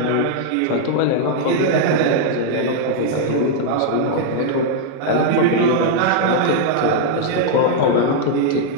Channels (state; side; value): different; both; correlation -0.01